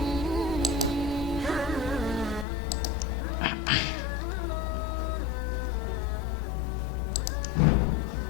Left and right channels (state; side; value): drops out; right; at 2.5 s